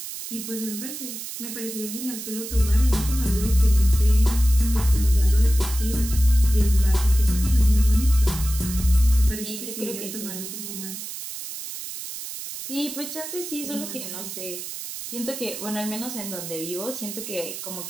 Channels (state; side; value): noise; right; hiss, 9 dB below the sound